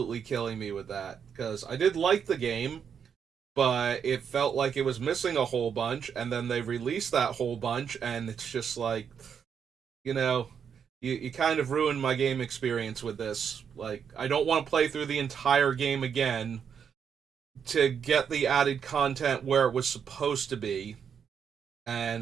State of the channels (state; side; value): quieter; left; 7.4 dB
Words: killing me with that. Because I did like the game, but it felt like it was missing a whole bunch, and then they released that whole bunch, and it's just like, you know, you kind of ruined my game experience with this. Like, I don't want to play through the entire game again to get the added content where it was supposed to be.